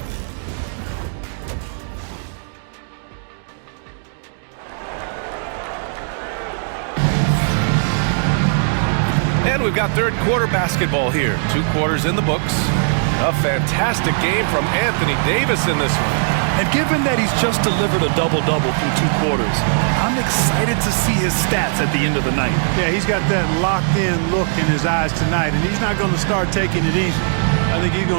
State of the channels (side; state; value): left; silent; digital silence